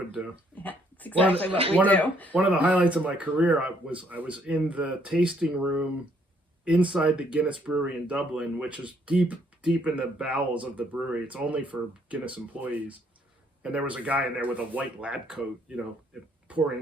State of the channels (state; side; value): normal; both; correlation 0.67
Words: do. Yeah, it's exactly what we do. One of the highlights of my career, I was in the tasting room inside the Guinness Brewery in Dublin, which is deep in the bowels of the brewery. It's only for Guinness employees. And there was a guy in there with a white lab coat,